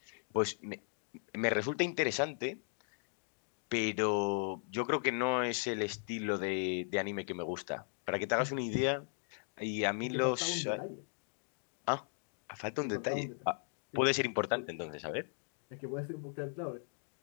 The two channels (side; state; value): right; silent; 53 dB below the other